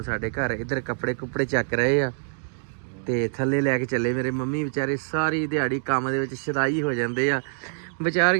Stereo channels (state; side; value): silent; left; digital silence